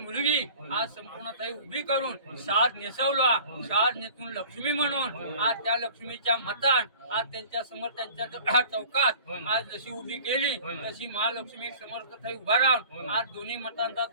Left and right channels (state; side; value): inverted; both; correlation -0.46